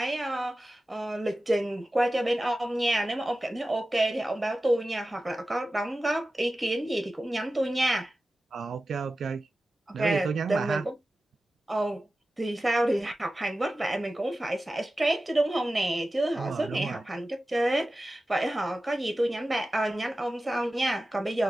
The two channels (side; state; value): both; normal; correlation 0.95